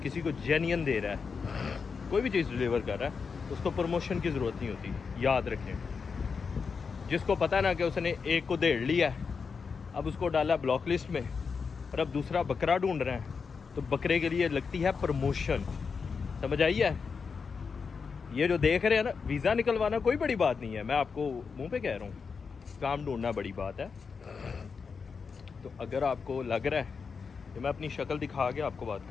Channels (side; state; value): right; quieter; 5.5 dB